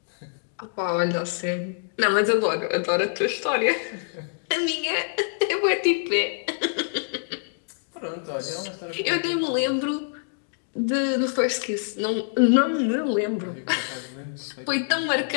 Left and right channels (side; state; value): right; silent; digital silence